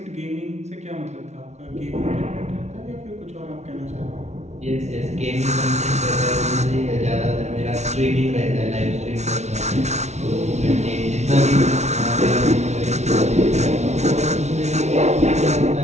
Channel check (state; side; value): late; left; 0.32 ms